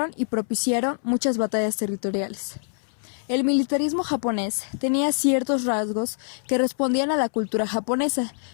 y propiciaron muchas batallas territoriales. El militarismo japonés tenía ciertos rasgos que respondían a la cultura japonesa,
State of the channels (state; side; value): silent; right; 62 dB below the other